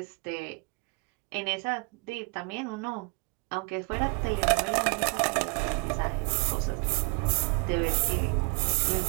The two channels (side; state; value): left; quieter; 31.9 dB